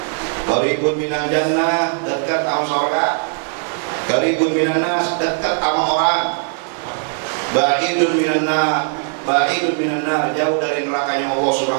Qaribun minan jannah, dekat sama surga. Qaribun minan nas, dekat sama orang. Ba'idun minan nar, jauh dari nerakanya Allah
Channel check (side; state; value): left; silent; 56 dB below the other